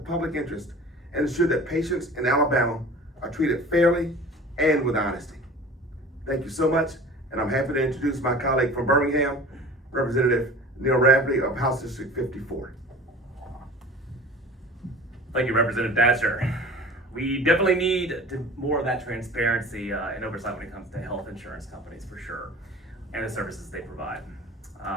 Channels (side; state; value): both; normal; correlation 0.41